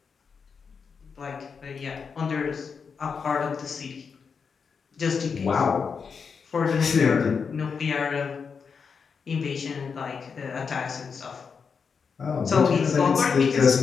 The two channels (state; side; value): quieter; right; 5.8 dB